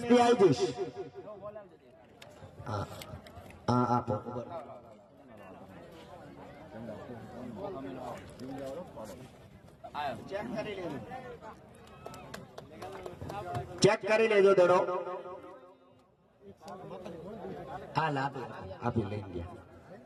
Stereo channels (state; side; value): identical; both; correlation 1.00